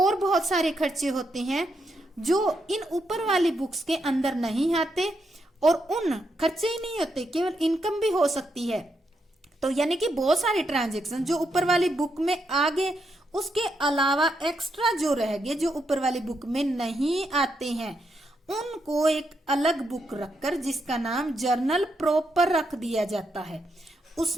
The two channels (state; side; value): normal; both; correlation 0.80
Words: बहुत सारे खर्चे होते हैं जो इन ऊपर वाली बुक्स के अंदर नहीं आते और उन खर्चे ही नहीं होते, केवल इनकम भी हो सकती है। तो यानी कि बहुत सारे ट्रांजैक्शन जो ऊपर वाली बुक में आ गए, उसके अलावा एक्स्ट्रा जो रह गए जो ऊपर वाली बुक में नहीं आते हैं, उनको एक अलग बुक रखकर जिसका नाम जर्नल प्रॉपर रख दिया जाता है,